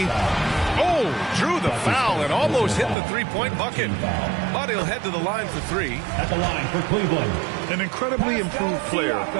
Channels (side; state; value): left; drops out; at 3.0 s